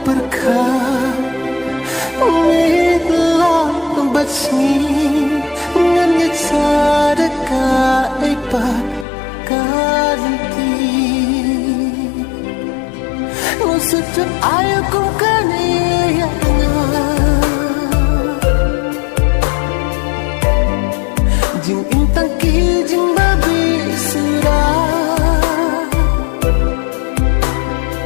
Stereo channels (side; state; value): right; drops out; at 9.1 s